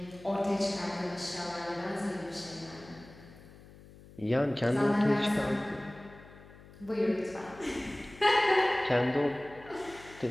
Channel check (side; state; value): left; noise; hum, 21 dB below the sound